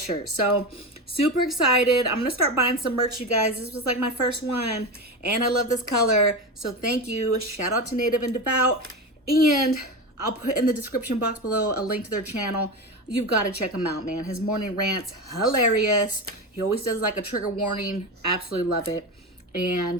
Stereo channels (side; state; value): both; normal; correlation 0.21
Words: So super excited. I'm going to start buying some merch, you guys. This was like my first one. And I love this color. So thank you. Shout out to Native and Devout. And I'll put in the description box below a link to their channel. You've got to check him out, man. His morning rants, hilarious. He always does like a trigger warning. Absolutely love it.